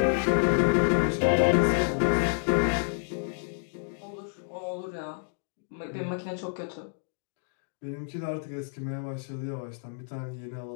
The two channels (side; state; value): right; silent; digital silence